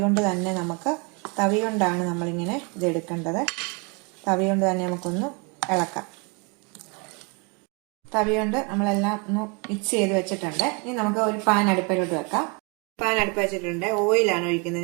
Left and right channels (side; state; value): left; quieter; 32.1 dB